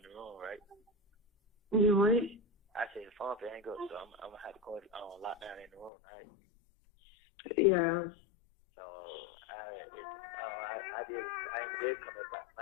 the room, right? You what? I said the phone for hang up, so I'm gonna have to go lock down in the room, right? Yeah. So I ain't did come up at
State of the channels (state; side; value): drops out; right; at 5.9 s